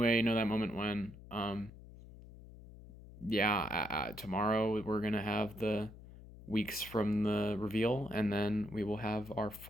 you know that moment when, yeah, tomorrow we're gonna have the weeks from the reveal, and then we will have our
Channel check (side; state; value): left; noise; hum, 17 dB below the sound